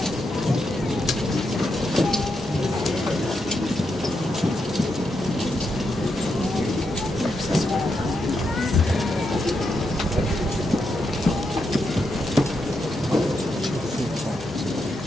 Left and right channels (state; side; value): normal; both; correlation 0.83